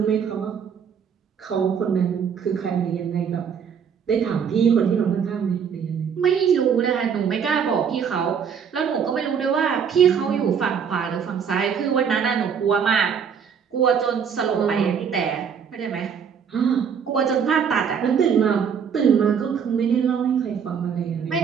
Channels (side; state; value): left; quieter; 7.1 dB